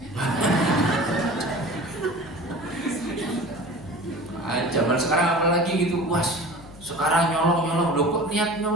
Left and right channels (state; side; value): noise; left; hum, 20 dB below the sound